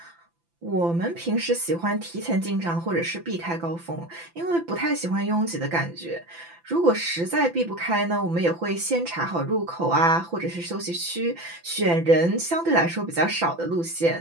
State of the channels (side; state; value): left; late; 5.9 ms